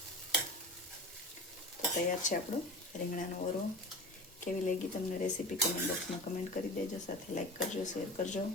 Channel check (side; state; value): both; normal; correlation 0.34